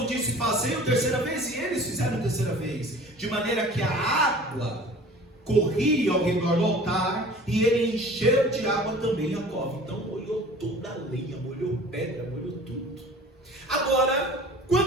disse: fazei-o terceira vez. E eles fizeram terceira vez. De maneira que a água corria ao redor do altar, e ele encheu de água também a cova. Então molhou toda a lenha, molhou pedra, molhou tudo. Agora,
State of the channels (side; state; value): both; normal; correlation 0.45